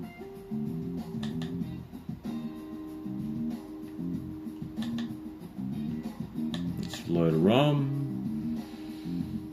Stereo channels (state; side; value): identical; both; correlation 1.00